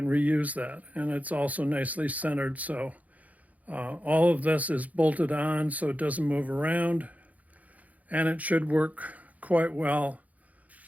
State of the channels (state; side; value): late; left; 0.074 ms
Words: reuse that. And it's also nicely centered, so all of this is bolted on so it doesn't move around, and it should work quite well